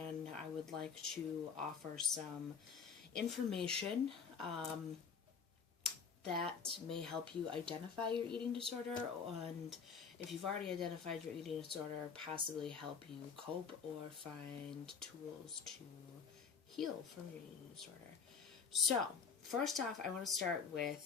I would like to offer some information that may help you identify your eating disorder, and if you've already identified your eating disorder, possibly help you cope or find tools to heal from your eating disorder. So, first off, I want to start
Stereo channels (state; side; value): quieter; right; 6.0 dB